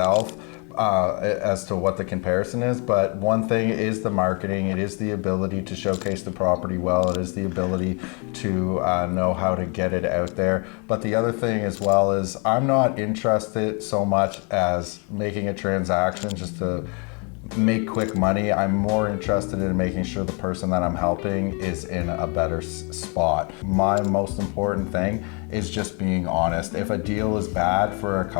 As to what the comparison is, but one thing is the marketing. It is the ability to showcase the property well. It is the ability to know how to get it out there. But the other thing as well is I'm not interested so much as making a transaction just to make quick money. I'm more interested in making sure the person that I'm helping is in a better spot. My most important thing is just being honest. If a deal is bad for a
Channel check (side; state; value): right; quieter; 34.2 dB